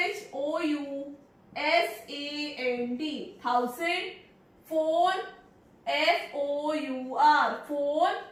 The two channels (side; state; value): both; identical; correlation 1.00